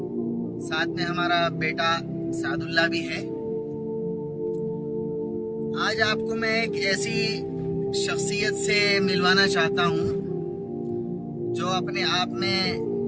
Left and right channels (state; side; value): identical; both; correlation 1.00